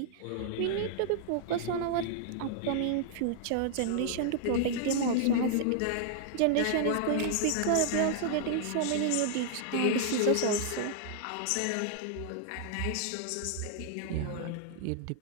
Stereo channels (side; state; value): both; different; correlation -0.01